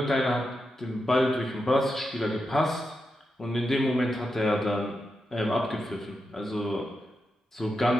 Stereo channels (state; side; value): normal; both; correlation 0.87